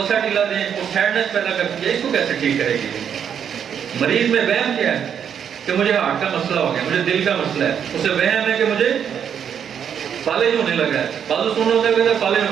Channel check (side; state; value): left; quieter; 8.2 dB